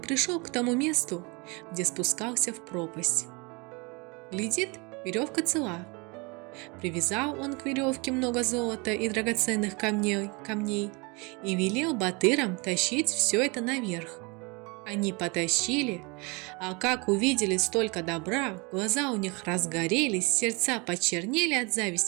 к тому месту, где спускался в пропасть. Глядит, веревка цела. Привязал он к веревке много золота и драгоценных камней и велел батырам тащить все это наверх. Они потащили, а как увидели столько добра, глаза у них разгорелись, сердца почернели от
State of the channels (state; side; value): quieter; left; 28.7 dB